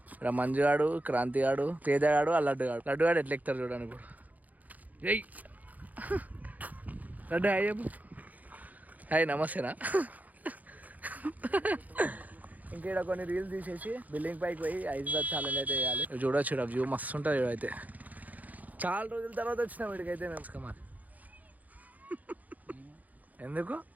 ఇక్కడ మంజుగాడు, క్రాంతిగాడు, తేజగాడు, లడ్డుగాడు. లడ్డుగాడు ఎట్లా ఎక్కుతారు చూడండి ఇప్పుడు. ఏయ్ లడ్డు హాయ్ చెప్పు. హాయ్ నమస్తేనా. ఇంకా ఇక్కడ కొన్ని రీల్స్ తీసేసి బిల్డింగ్ పైకి పోయి ఐస్ బాత్ ఛాలెంజ్ అయితే వేయాలి. చూడొచ్చు వ్యూ మస్తు ఉంటుంది. అయితే చాలా రోజుల తర్వాత వచ్చినాం వీడికైతే మేము. మరి ఎందుకు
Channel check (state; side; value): late; left; 0.079 ms